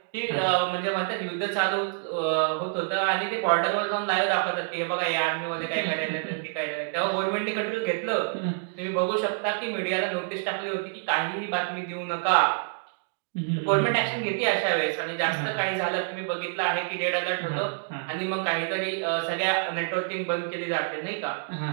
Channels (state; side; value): silent; left; digital silence